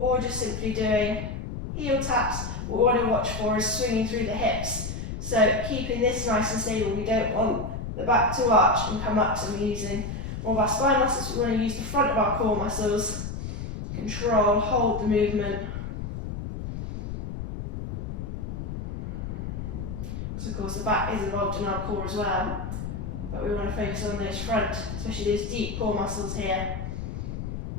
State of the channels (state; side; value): noise; left; rumble, 6 dB below the sound